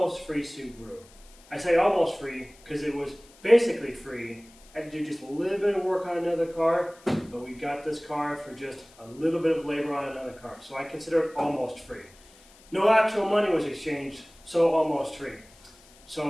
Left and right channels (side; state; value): left; noise; hiss, 26 dB below the sound